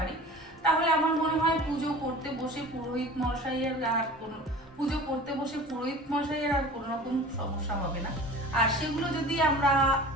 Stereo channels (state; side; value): normal; both; correlation 0.40